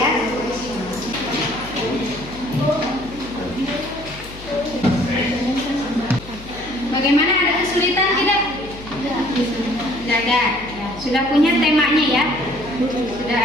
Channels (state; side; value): noise; left; hum, 16 dB below the sound